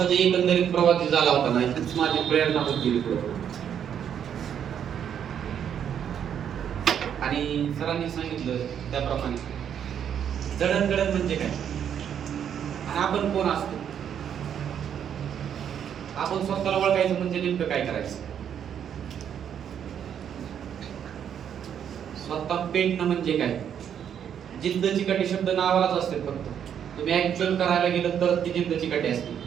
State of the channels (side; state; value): left; quieter; 8.8 dB